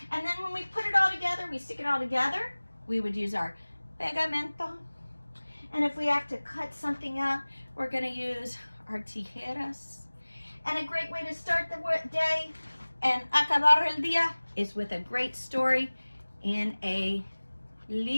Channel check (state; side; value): inverted; both; correlation -1.00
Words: And then when we put it all together, we stick it all together, we would use our pegamento. And if we have to cut something out, we're going to use our tijeras. And a great way to start the day and acabar el día is with a great story in a